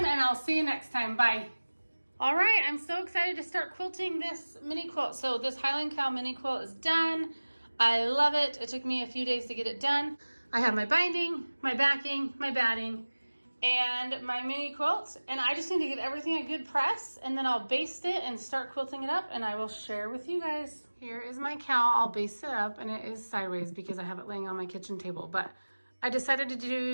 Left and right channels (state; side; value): inverted; both; correlation -1.00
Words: and I'll see you next time. Bye. All right, I'm so excited to start quilting this mini quilt. So this Highland cowl mini quilt is done. I love it. It took me a few days to get it done. I have my binding, my backing, my batting, and my mini quilt, and I just need to give everything a good press, and then I'll baste it and start quilting it up, and I will share with you guys. Here is my cowl. I'll baste it up, and it is sideways because I have it laying on my kitchen table, but I decided to